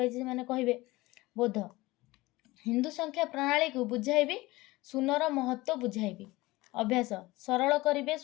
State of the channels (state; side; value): quieter; right; 20.2 dB